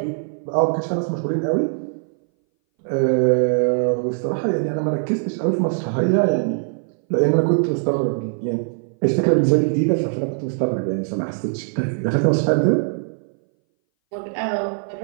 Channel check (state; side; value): silent; left; 61 dB below the other